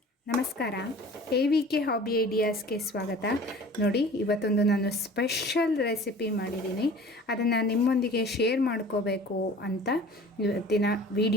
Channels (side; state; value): both; normal; correlation 0.44